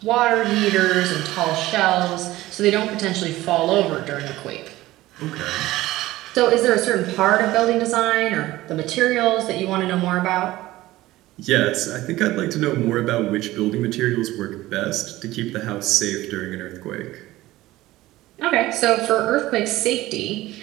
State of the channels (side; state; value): left; quieter; 17.0 dB